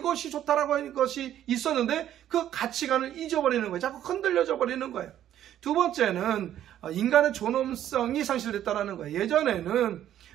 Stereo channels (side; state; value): left; quieter; 11.4 dB